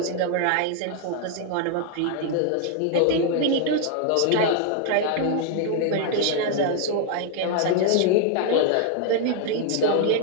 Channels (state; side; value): different; both; correlation 0.00